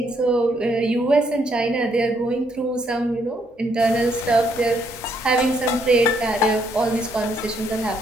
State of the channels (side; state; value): both; normal; correlation 0.72